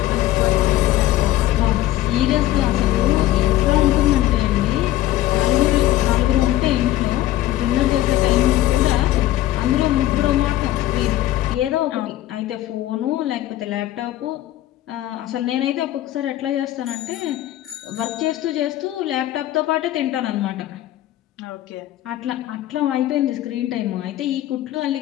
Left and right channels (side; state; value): right; quieter; 14.4 dB